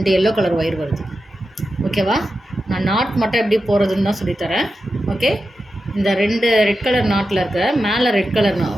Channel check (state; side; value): normal; both; correlation 0.91